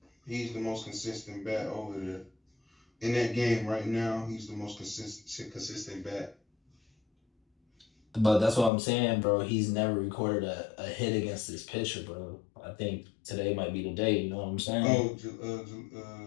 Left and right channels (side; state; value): right; drops out; at 8.7 s